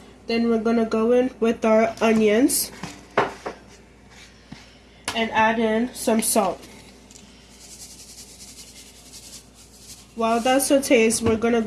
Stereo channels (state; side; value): identical; both; correlation 1.00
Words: Then we're going to go in with our onions and add in some salt. While that sautés, we're going to